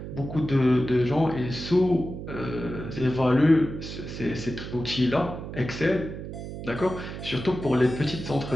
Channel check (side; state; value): right; noise; hum, 9 dB below the sound